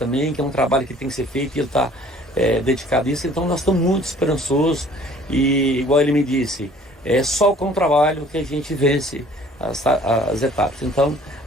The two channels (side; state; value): both; normal; correlation 0.54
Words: que é um trabalho que tem que ser feito, e ele está dedicado a isso. Então nós estamos muito esperançosos, e igual ele me disse, é só com o trabalho que a gente vence as etapas. Então